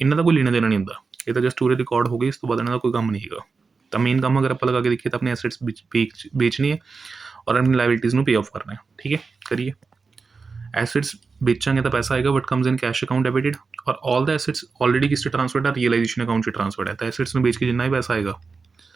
ਦਾ ਕੋਈ ਲੈਣਾ ਦੇਣਾ ਨਹੀਂ ਹੁੰਦਾ, ਇਹ ਤਾਂ ਜਸਟ ਪੂਰੇ ਰਿਕਾਰਡ ਹੋ ਗਏ, ਇਸ ਤੋਂ ਬਾਅਦ ਇਹਨਾਂ ਦਾ ਕੋਈ ਕੰਮ ਨਹੀਂ ਹੈਗਾ। ਤਾਂ ਮੇਨ ਕੰਮ ਅਗਰ ਆਪਾਂ ਲਗਾ ਕੇ ਦੇਖੀਏ ਤਾਂ ਆਪਣੇ ਐਸੈਟਸ ਵੇਚਣੀ ਹੈ ਔਰ ਆਪਣੀ ਲਾਇਬਿਲਿਟੀਜ਼ ਨੂੰ ਪੇ ਆਫ ਕਰਨਾ ਹੈ। ਠੀਕ ਹੈ, ਕਰੀਏ। एसेट्स बेचांगे तो पैसा आएगा, but comes in cash account debited, और ऑल द एसेट्स ऑलरेडी किस ट्रांसफर्ड है, रियलाइजेशन अकाउंट से ट्रांसफर्ड है। तो एसेट्स में बेच के जितना भी पैसा आएगा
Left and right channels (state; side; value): quieter; left; 4.6 dB